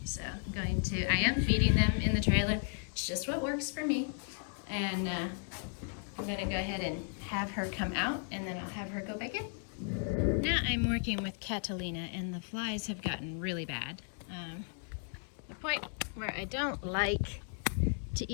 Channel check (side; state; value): right; silent; 54 dB below the other